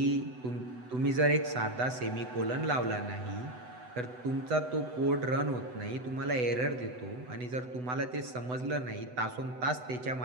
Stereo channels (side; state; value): left; late; 8.0 ms